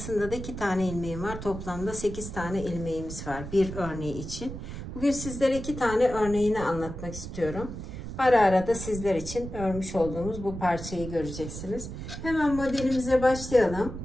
da 2 tane ilmeğim var. Toplamda 8 tane ilmeğimiz var bir örneği için. Bugün sizlere 2 tane örneğini anlatmak istiyorum. Ara ara da sizler için örmüş olduğumuz bu parçayı göreceksiniz. Hemen modelimize başlayalım.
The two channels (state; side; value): noise; right; rumble, 9 dB below the sound